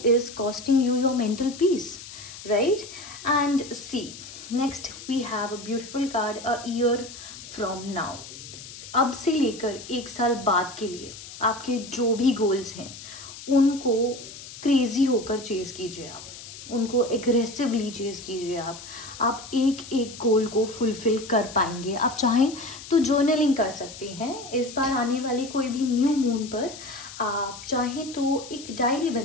is costing you your mental peace, right? And see, next we have a beautiful card, a year from now. अब से लेकर 1 साल बाद के लिए आपके जो भी गोल्स हैं उनको क्रेजी होकर चेज कीजिए, आप उनको एग्रेसिवली चेज कीजिए। आप एक एक गोल को फुलफिल कर पाएंगे। आप चाहें तो जर्नलिंग कर सकते हैं इस बार आने वाले कोई भी न्यू मून पर। आप चाहें तो एक डायरी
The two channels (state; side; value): noise; left; hiss, 14 dB below the sound